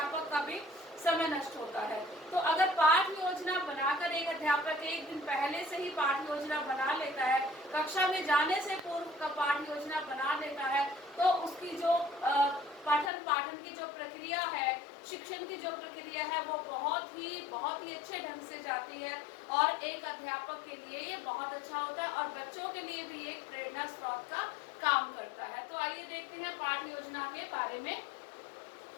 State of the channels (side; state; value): right; drops out; at 13.1 s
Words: का भी समय नष्ट होता है। तो अगर पाठ्य योजना बनाकर एक अध्यापक एक दिन पहले से ही पाठ्य योजना बना लेता है, कक्षा में जाने से पूर्व का पाठ्य योजना बना लेता है, तो उसकी जो पठन पाठन की जो प्रक्रिया है, शिक्षण की जो प्रक्रिया है, वो बहुत ही अच्छे ढंग से जाती है और एक अध्यापक के लिए ये बहुत अच्छा होता है और बच्चों के लिए भी एक प्रेरणा स्रोत का काम करता है। तो आइए देखते हैं पाठ्य योजना के बारे में।